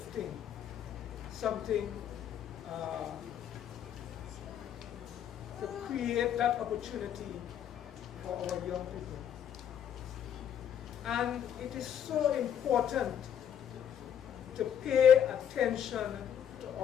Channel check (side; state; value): right; quieter; 9.1 dB